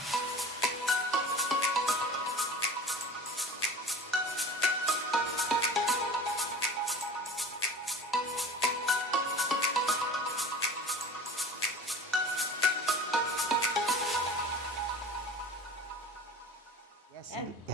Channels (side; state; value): both; normal; correlation 0.41